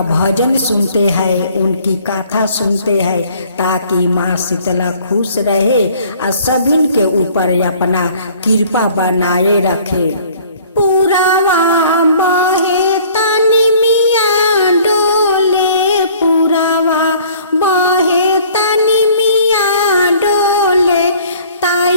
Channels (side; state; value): both; inverted; correlation -0.54